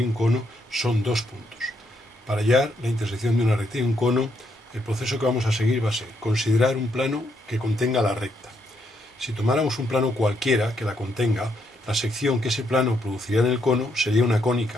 un cono son dos puntos. Para hallar la intersección de una recta y un cono, el proceso que vamos a seguir va a ser considerar un plano que contenga la recta. Si tomáramos un plano cualquiera que la contenga, la sección que ese plano produciría en el cono sería una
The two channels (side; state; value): both; normal; correlation 0.76